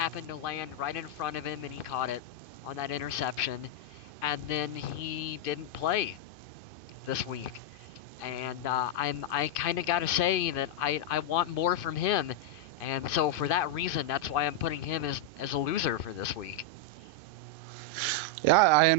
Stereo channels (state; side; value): late; right; 2.5 ms